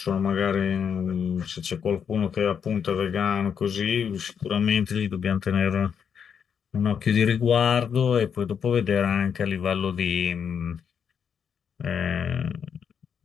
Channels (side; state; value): right; quieter; 7.4 dB